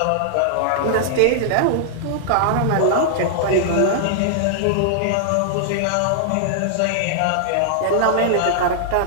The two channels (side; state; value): both; different; correlation -0.01